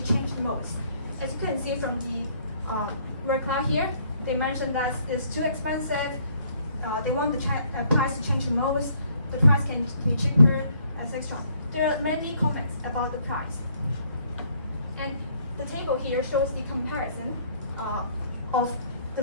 change the most. As you can see from the reply here, they mentioned that it's too expensive. They want the price to change the most. The price can be cheaper, etc. There are many comments about the price. And the table here shows the comparison of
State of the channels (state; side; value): inverted; both; correlation -0.64